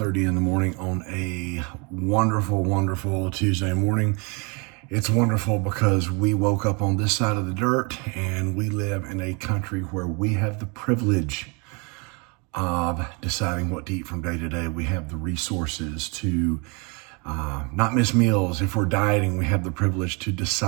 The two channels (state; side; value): quieter; left; 31.7 dB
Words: in the morning on a wonderful, wonderful Tuesday morning. It's wonderful because we woke up on this side of the dirt and we live in a country where we have the privilege of deciding what to eat from day to day. We have the resources to not miss meals. If we're dieting, we have the privilege to